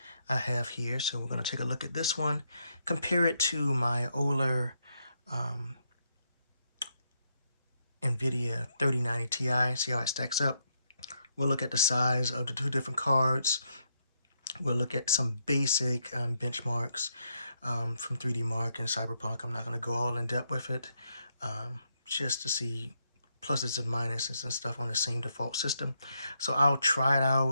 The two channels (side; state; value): both; inverted; correlation -0.78